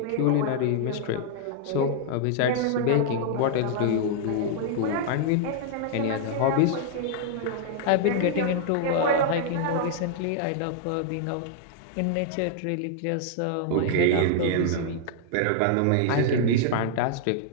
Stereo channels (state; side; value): different; both; correlation -0.01